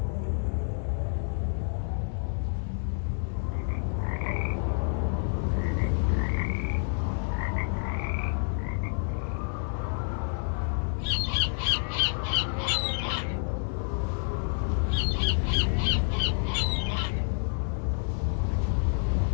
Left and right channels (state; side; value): silent; right; 59 dB below the other